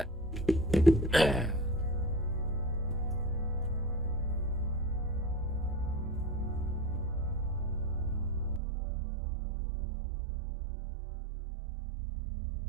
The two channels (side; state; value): left; drops out; at 8.6 s